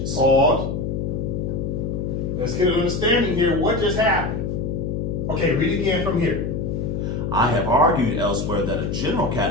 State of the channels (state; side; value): noise; left; hum, 2 dB below the sound